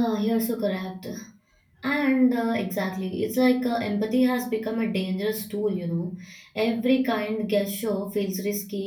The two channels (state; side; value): identical; both; correlation 1.00